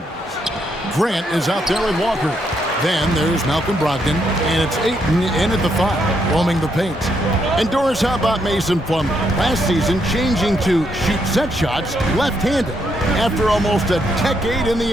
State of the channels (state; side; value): normal; both; correlation 0.76